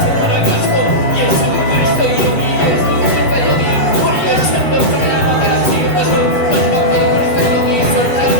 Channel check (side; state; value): right; late; 7.5 ms